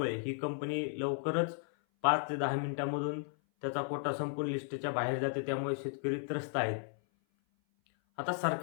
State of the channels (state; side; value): silent; right; 55 dB below the other